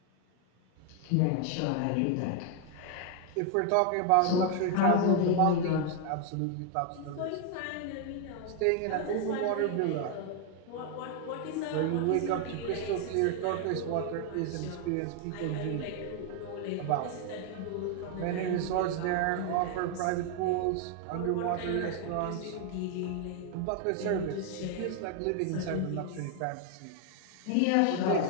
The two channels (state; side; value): different; both; correlation 0.01